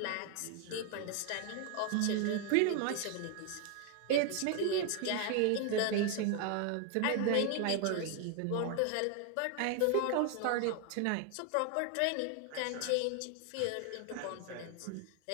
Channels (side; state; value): both; different; correlation 0.01